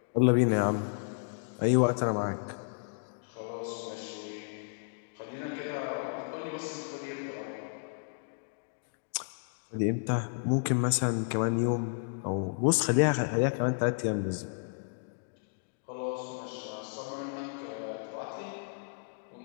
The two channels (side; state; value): right; silent; digital silence